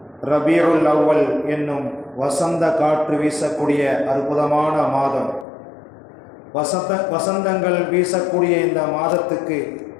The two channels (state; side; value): drops out; right; at 5.5 s